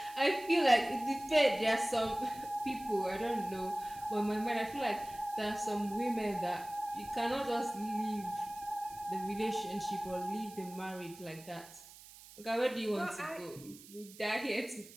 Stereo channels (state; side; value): noise; right; hiss, 19 dB below the sound